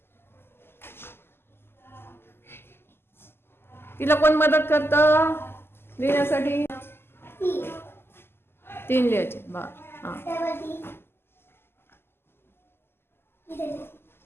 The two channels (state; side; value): late; right; 0.11 ms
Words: तिला कोण मदत करतं लिहिण्यासाठी? 3 लिहायचे. बा हा